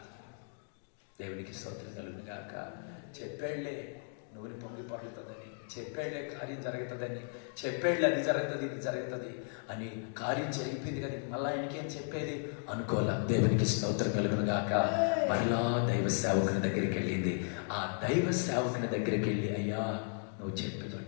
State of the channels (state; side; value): silent; right; 54 dB below the other